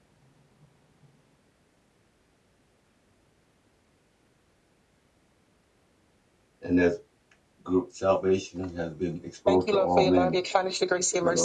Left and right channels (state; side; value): identical; both; correlation 1.00